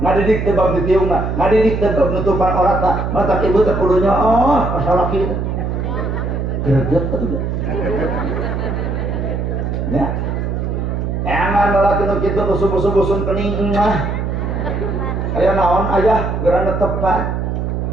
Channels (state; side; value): noise; right; hum, 2 dB below the sound